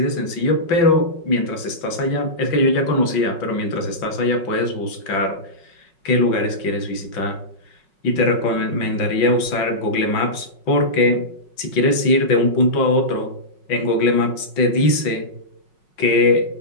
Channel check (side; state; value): right; late; 5.5 ms